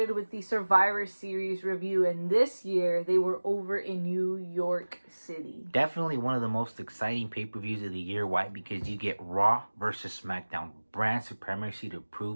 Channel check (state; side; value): inverted; both; correlation -1.00